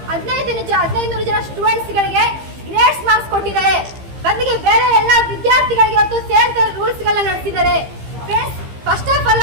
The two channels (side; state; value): left; late; 15 ms